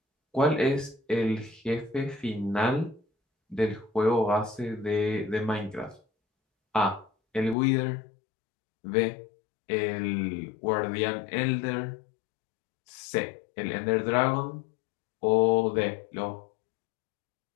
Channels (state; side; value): drops out; right; at 7.6 s